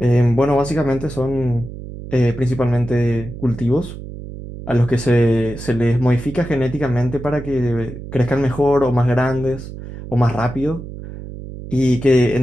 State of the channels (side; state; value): right; noise; hum, 11 dB below the sound